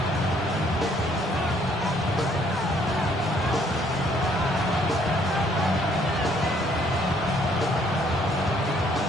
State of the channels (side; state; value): both; normal; correlation 0.65